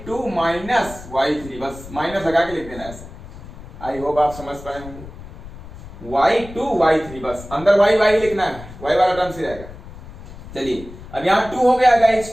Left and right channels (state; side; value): noise; left; rumble, 15 dB below the sound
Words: माइनस y3, बस माइनस लगा के लिख देना है ऐसे। आई होप आप समझ पाए होंगे, y2 y3, बस अंदर y लिखना है, y वाला टर्म से रहेगा। चलिए अब यहाँ 2 हो गया गाइस,